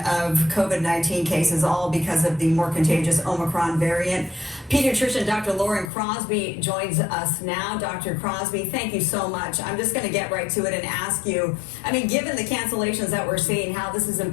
of COVID-19 cases, all because of the more contagious Omicron variant. Pediatrician Dr. Lauren Crosby joins us now. Dr. Crosby, thank you so much. I'm just going to get right to it and ask you, I mean, given the cancellations that we're seeing, how this is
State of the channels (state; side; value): drops out; right; at 5.9 s